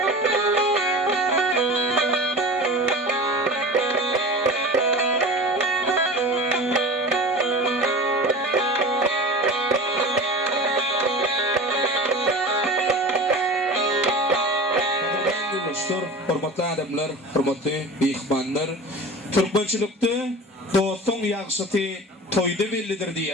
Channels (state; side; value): normal; both; correlation 0.34